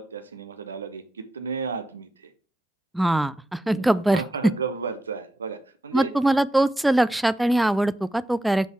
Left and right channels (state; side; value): normal; both; correlation 0.87